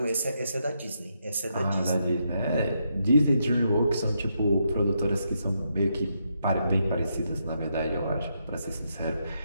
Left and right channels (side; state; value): both; inverted; correlation -0.80